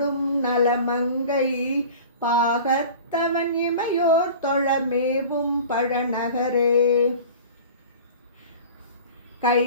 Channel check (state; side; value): inverted; both; correlation -0.40